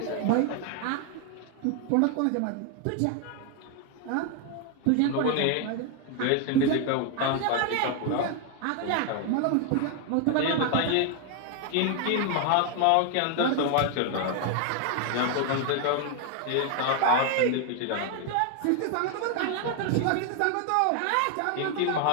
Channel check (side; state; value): both; different; correlation 0.01